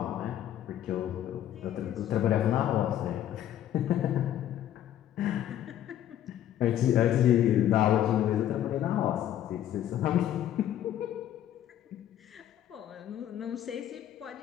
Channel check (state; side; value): quieter; right; 11.5 dB